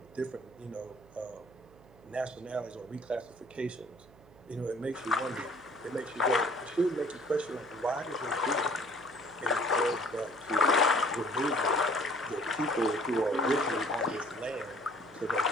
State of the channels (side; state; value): right; noise; hum, 24 dB below the sound